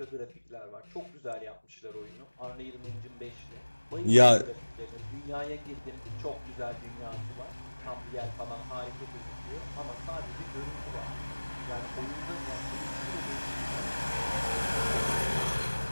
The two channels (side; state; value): both; inverted; correlation -1.00